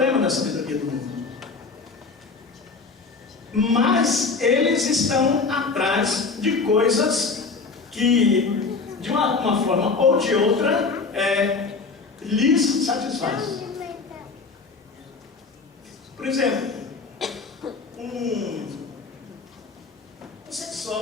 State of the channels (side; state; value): right; quieter; 4.4 dB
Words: da sabedoria do mundo. Mas eles estão atrás de coisas que, de uma forma ou de outra, lhes satisfaz. Por exemplo, um